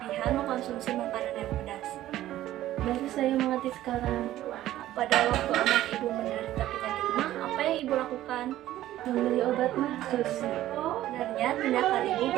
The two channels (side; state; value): left; quieter; 14.0 dB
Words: mengkonsumsi makanan yang pedas. Baru saya mengerti sekarang. Pada waktu anak Ibu menderita penyakit MA, apa yang Ibu lakukan? Membeli obat MA, Sus. Sebenarnya tindakan Ibu